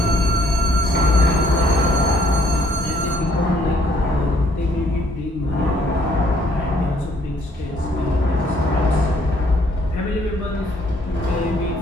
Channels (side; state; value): both; normal; correlation 0.65